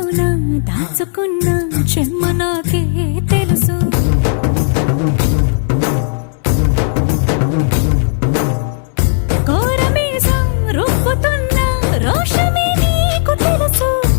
దాచుకున్న చెమ్మ నాకే తెలుసు కోరమీసం రూపుతున్న రోషమే నీకు తెలుసు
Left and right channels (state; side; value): silent; right; 61 dB below the other